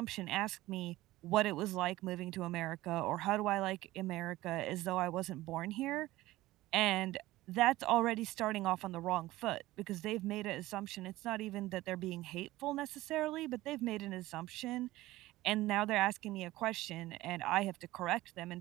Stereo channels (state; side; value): quieter; left; 17.3 dB